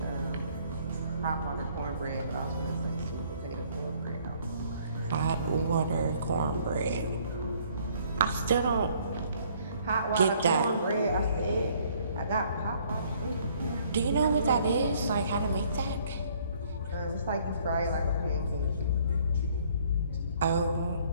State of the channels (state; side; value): inverted; both; correlation -0.62